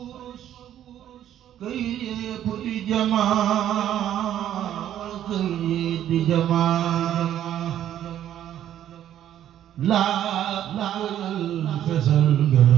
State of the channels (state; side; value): quieter; left; 11.2 dB